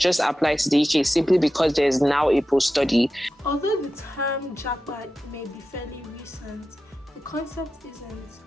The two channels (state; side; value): normal; both; correlation 0.92